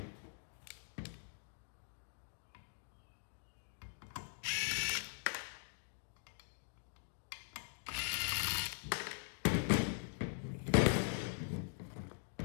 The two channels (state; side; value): silent; right; digital silence